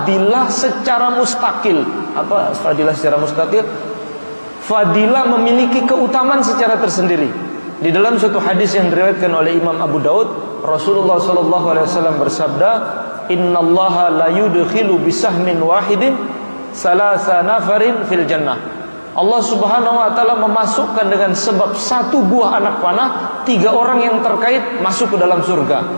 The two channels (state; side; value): inverted; both; correlation -1.00